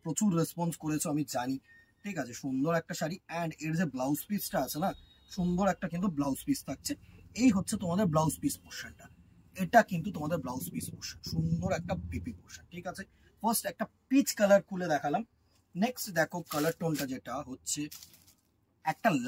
প্রচুর রেসপন্স করেছো আমি জানি। ঠিক আছে, সুন্দর একটা শাড়ি, অ্যান্ড এর যে ব্লাউজ পিসটা আছে না, সুন্দর একটা কিন্তু ব্লাউজ পিস থাকছে। এই হচ্ছে তোমাদের ব্লাউজ পিস পোর্শনটা, এটা কিন্তু তোমাদের ব্লাউজ পিস পোর্শন, সুন্দর একটা পিপি পোর্শন। ঠিক আছে, ফার্স্ট একটা পিচ কালার খুলে দেখালাম। নেক্সট দেখো কালার টোনটা যেটা হচ্ছে একটা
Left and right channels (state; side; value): identical; both; correlation 1.00